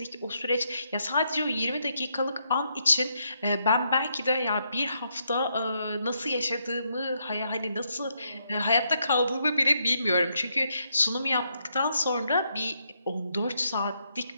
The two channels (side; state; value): both; inverted; correlation -0.78